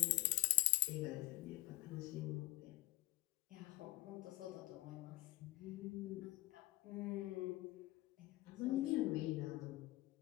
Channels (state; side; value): quieter; right; 20.2 dB